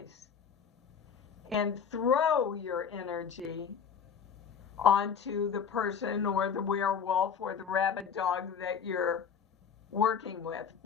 and throw your energy onto the person or the werewolf or the rabid dog that you're working with,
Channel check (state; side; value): quieter; right; 7.0 dB